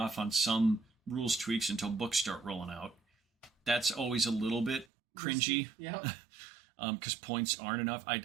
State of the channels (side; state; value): left; drops out; at 4.9 s